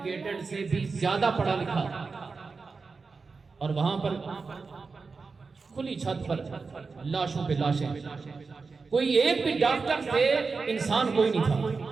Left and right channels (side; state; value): left; quieter; 4.5 dB